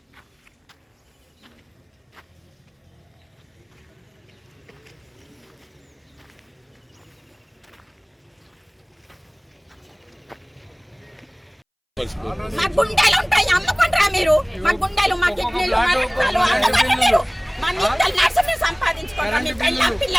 మా గుండెలు ఉంటాయి, అమ్ముకుంటారా మీరు? మా గుండెలు, మా కిడ్నీలు, మా రక్తాలు అమ్ముకుంటారా మీరు? మా నిత్యాలు నర్సుని సంపాదించుకుంటారా? మీ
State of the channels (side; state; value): both; identical; correlation 1.00